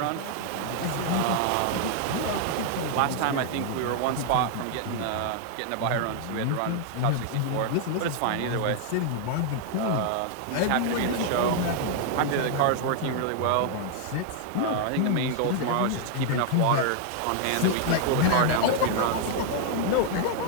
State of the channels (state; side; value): different; both; correlation 0.00